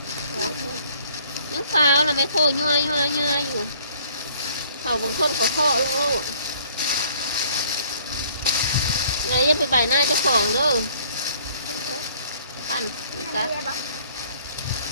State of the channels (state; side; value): inverted; both; correlation -0.57